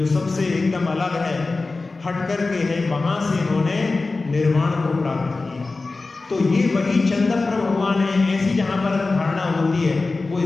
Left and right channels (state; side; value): quieter; right; 3.6 dB